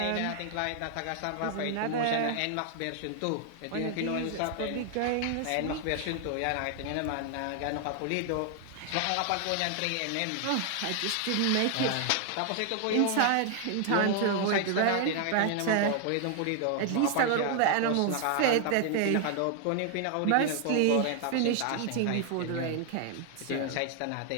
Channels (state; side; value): different; both; correlation 0.00